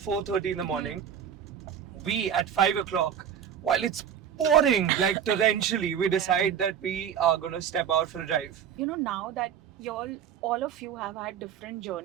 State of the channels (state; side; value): quieter; left; 8.6 dB